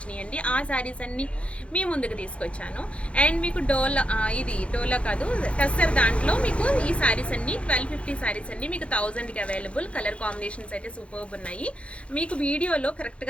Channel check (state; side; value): late; right; 0.061 ms